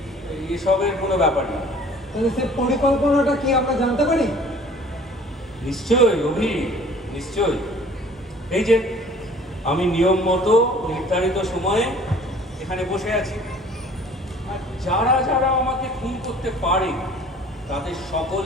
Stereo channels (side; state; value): both; normal; correlation 0.50